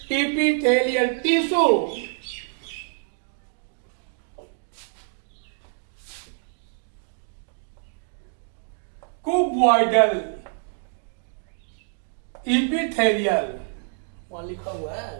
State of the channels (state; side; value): silent; left; 61 dB below the other